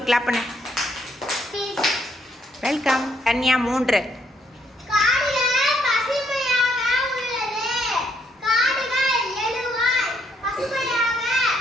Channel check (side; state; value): both; normal; correlation 0.71